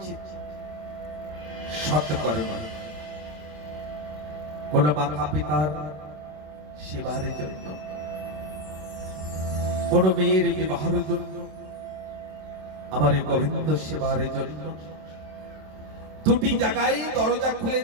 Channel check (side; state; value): left; late; 26 ms